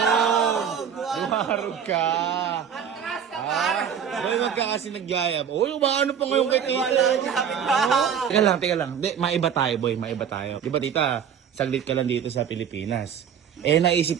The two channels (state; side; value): quieter; left; 8.1 dB